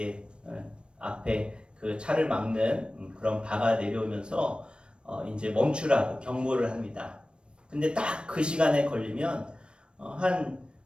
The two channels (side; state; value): left; late; 0.056 ms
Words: 앞에 그 차를 막는 그런 바가 내려오면서 이제 멈추라고 경고를 합니다. 근데 딱 그 시간에 걸리면 한